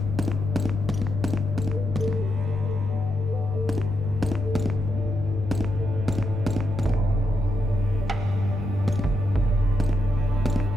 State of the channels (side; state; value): both; normal; correlation 0.83